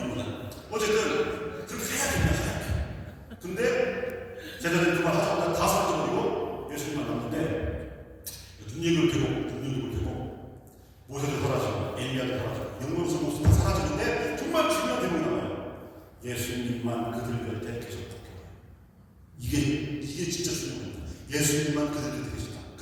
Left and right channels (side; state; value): both; identical; correlation 1.00